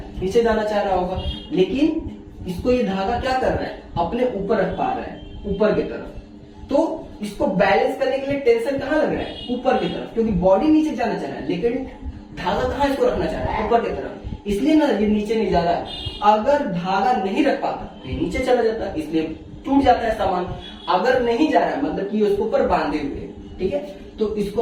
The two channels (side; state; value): both; identical; correlation 1.00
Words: नीचे जाना चाह रहा होगा। लेकिन इसको ये धागा क्या कर रहा है, अपने ऊपर रख पा रहा है, ऊपर की तरफ। तो इसको बैलेंस करने के लिए टेंशन कहाँ लग रहा है, ऊपर की तरफ, क्योंकि बॉडी नीचे जाना चाह रहा है, लेकिन धागा कहाँ इसको रखना चाह रहा है, ऊपर की तरफ, इसलिए ना ये नीचे नहीं जा रहा है। अगर धागा नहीं रख पाता ये नीचे चला जाता, इसलिए टूट जाता है सामान। अगर नहीं जा रहा है मतलब कि उसके ऊपर बांधे हुए, ठीक है। तो